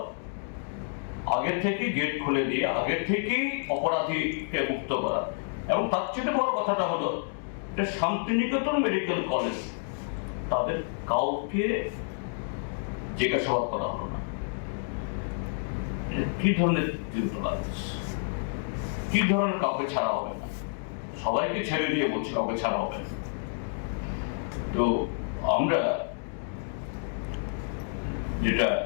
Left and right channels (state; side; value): silent; right; digital silence